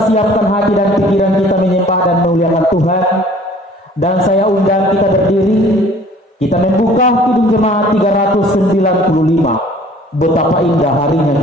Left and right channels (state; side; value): normal; both; correlation 0.52